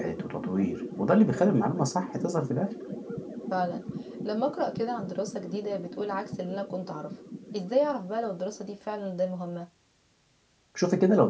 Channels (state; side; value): identical; both; correlation 1.00